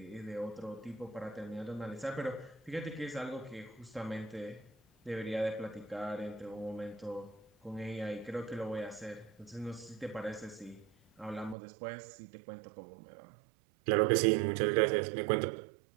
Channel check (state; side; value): drops out; left; at 11.6 s